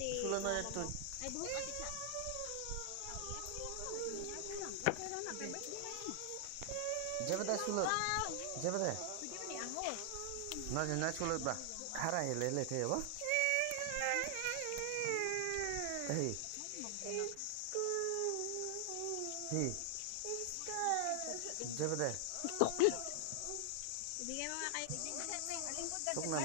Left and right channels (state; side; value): different; both; correlation 0.00